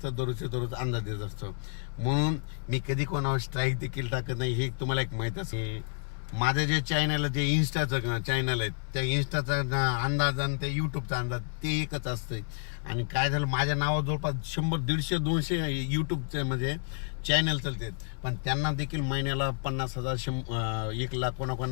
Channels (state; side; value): silent; right; 58 dB below the other